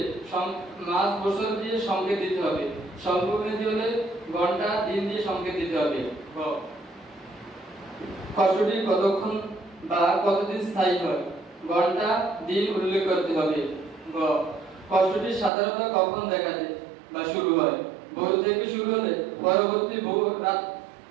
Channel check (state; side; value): drops out; left; at 15.5 s